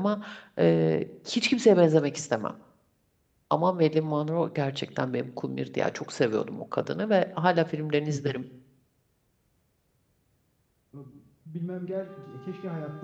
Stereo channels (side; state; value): both; identical; correlation 1.00